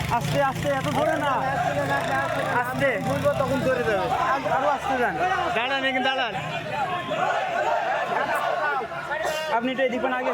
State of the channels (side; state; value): both; identical; correlation 1.00